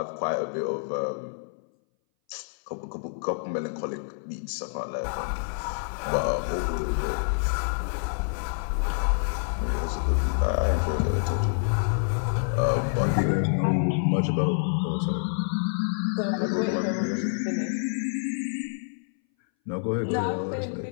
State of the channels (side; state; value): right; silent; 59 dB below the other